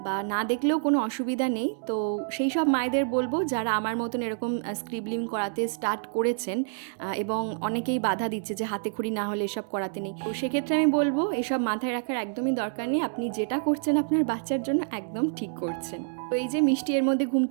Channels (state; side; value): silent; left; 59 dB below the other